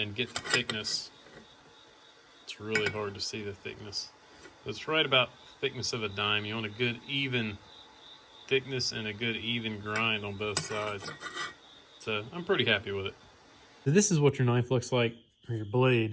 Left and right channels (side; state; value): both; identical; correlation 1.00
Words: get the thickness. It's really hard to see the thickness. It's right about the thickness of a dime. You want a good even thickness and a good even grind on both sides. So I'm pretty happy with it. So this is what your knife looks like, or your